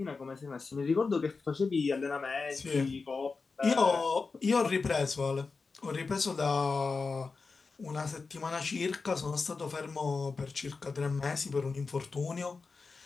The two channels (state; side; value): quieter; right; 4.4 dB